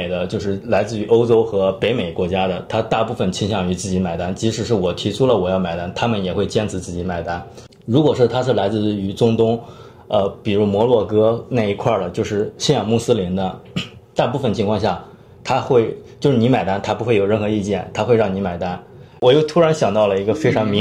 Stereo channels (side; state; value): both; identical; correlation 1.00